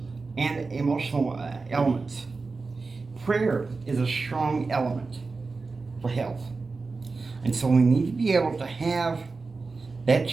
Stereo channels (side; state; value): left; quieter; 4.0 dB